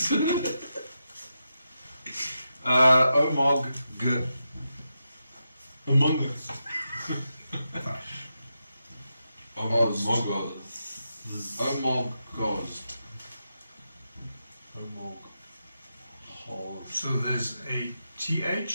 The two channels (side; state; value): both; inverted; correlation -0.87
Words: Omog G. Among Us. Omog. So there's a